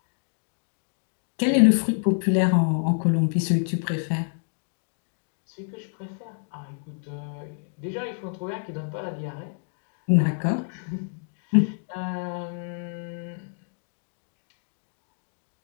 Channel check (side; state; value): right; silent; 60 dB below the other